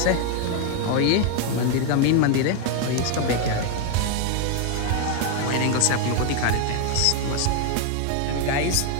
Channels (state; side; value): different; both; correlation 0.01